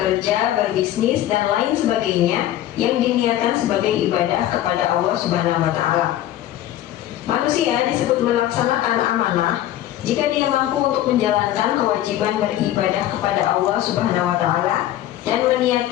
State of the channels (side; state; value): right; quieter; 13.1 dB